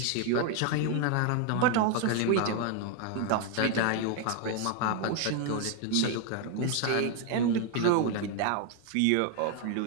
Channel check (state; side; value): different; both; correlation 0.00